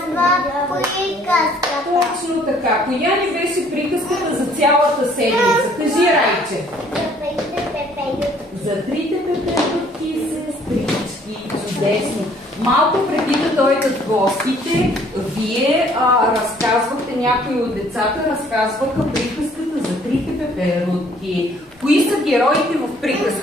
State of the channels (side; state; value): both; normal; correlation 0.60